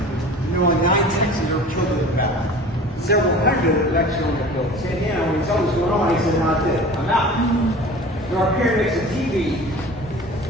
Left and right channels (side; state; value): both; normal; correlation 0.40